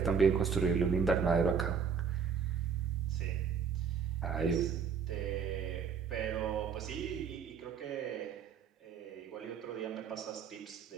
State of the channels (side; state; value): left; quieter; 6.5 dB